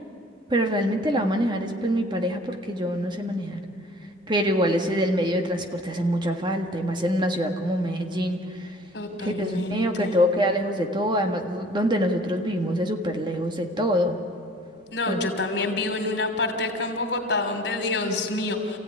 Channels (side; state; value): both; normal; correlation 0.49